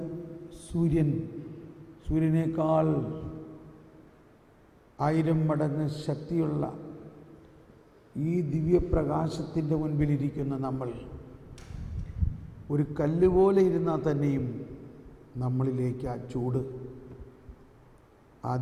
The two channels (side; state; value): both; identical; correlation 1.00